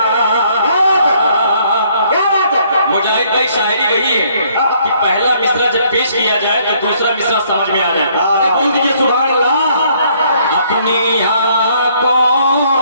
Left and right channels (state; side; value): inverted; both; correlation -0.65